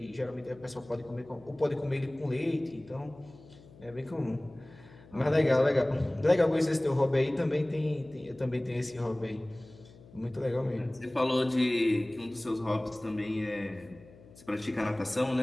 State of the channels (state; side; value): noise; left; hum, 22 dB below the sound